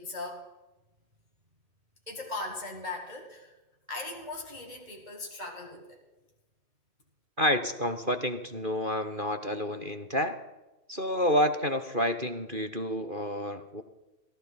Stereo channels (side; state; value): left; late; 2.5 ms